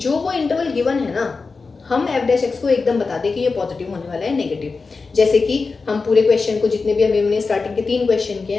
वो इंटरवल गिवन है ना, हम एफ डैश एक्स को एकदम बता दें कि ये पॉजिटिव होने वाला है, नेगेटिव. जैसे कि हम पूरे क्वेश्चन को, जितने भी अभी हमने स्टार्टिंग के 3 क्वेश्चन किए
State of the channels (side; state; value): right; quieter; 4.3 dB